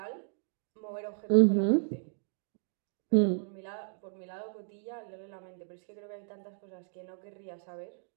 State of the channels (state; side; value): silent; left; digital silence